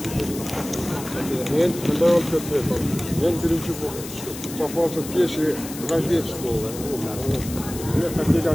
Мен бірінші попался в пешие разведчиков. Я хотел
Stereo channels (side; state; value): left; noise; hiss, 12 dB below the sound